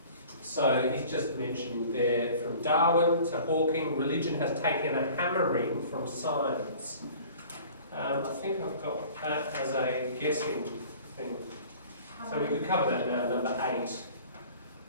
So he's just mentioned there, from Darwin to Hawking, religion has taken a hammering from science. I think I've got that as a guessing thing. So we could cover that now, number 8.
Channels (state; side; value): inverted; both; correlation -0.47